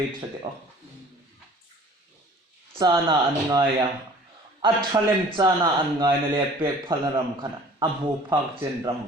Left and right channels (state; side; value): normal; both; correlation 0.49